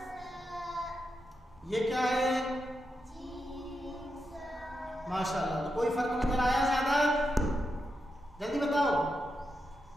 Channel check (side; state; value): both; normal; correlation 0.86